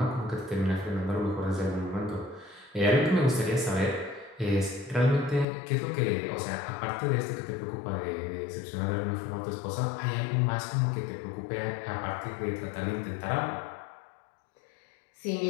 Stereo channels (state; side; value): drops out; right; at 5.5 s